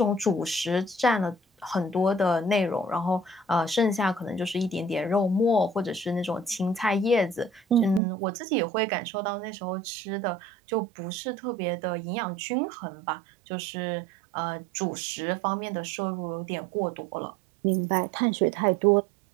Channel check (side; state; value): left; drops out; at 8.0 s